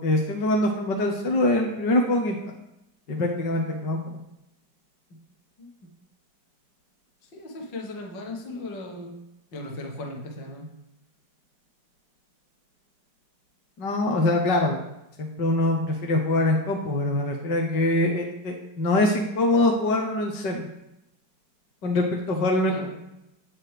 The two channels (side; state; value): right; late; 5.2 ms